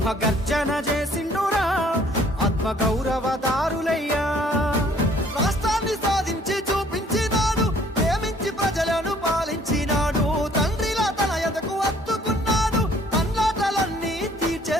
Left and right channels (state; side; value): normal; both; correlation 0.59